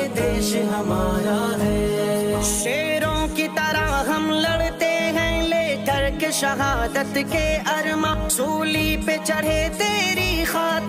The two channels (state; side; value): identical; both; correlation 1.00